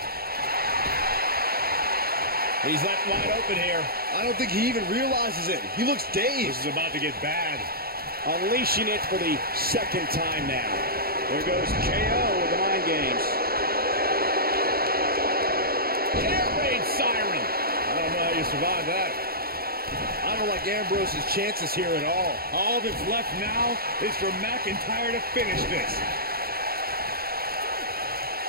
He's left wide open here. I don't think he even realizes it. He looks dazed. This is about to get bad. Unleashing it for the second time now. There goes KO with the mind games. Air raid siren. I don't know how you survive that. I don't like Ambrose's chances here at all. All that's left now is for McIntyre to finish this.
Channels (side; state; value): left; late; 0.44 ms